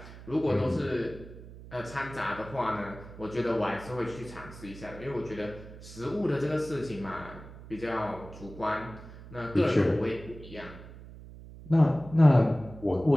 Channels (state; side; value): noise; right; hum, 16 dB below the sound